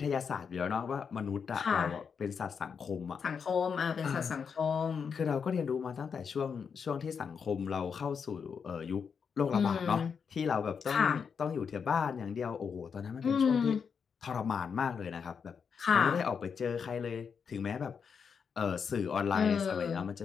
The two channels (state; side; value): quieter; right; 6.4 dB